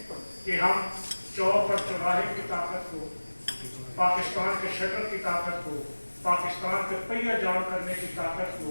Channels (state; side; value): inverted; both; correlation -1.00